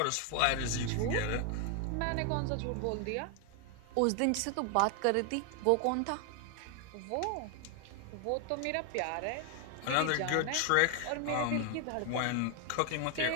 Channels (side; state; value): both; different; correlation 0.01